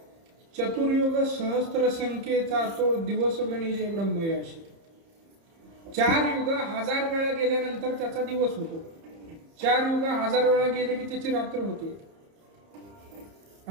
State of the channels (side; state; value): left; late; 30 ms